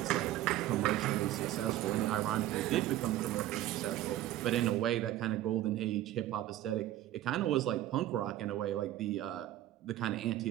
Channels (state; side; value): quieter; left; 13.9 dB